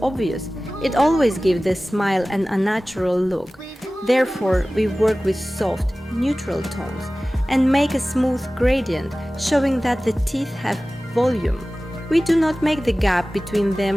obvious. It always gives the smile an unnatural look. Therefore, we work with soft, neutral tones and make a smooth gradient, showing that the teeth have volume. We do not make the gap between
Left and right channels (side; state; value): both; normal; correlation 0.97